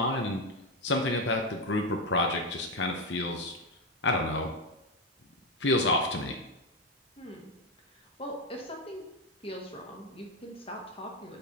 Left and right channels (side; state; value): both; normal; correlation 0.08